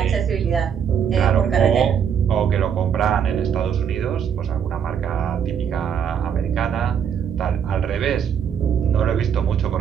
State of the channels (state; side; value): quieter; left; 7.9 dB